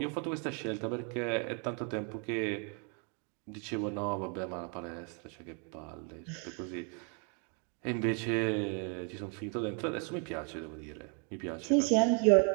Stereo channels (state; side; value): quieter; left; 38.1 dB